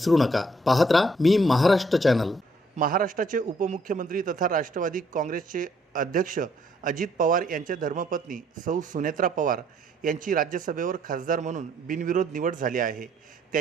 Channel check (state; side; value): normal; both; correlation 0.66